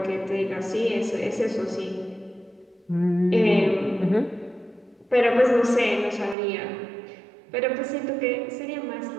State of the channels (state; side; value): drops out; left; at 6.4 s